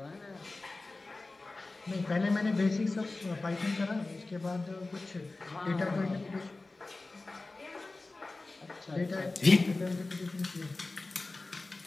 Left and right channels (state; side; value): quieter; right; 3.3 dB